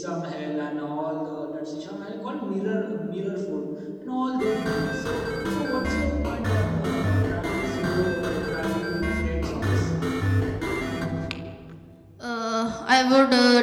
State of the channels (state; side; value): identical; both; correlation 1.00